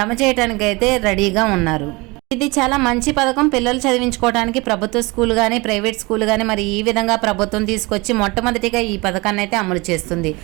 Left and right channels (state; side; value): quieter; left; 24.8 dB